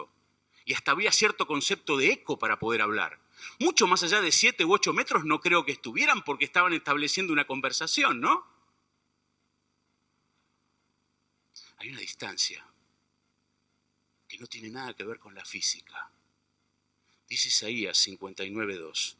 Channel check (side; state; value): both; identical; correlation 1.00